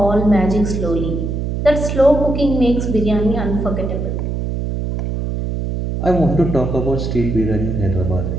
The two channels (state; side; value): noise; right; hum, 2 dB below the sound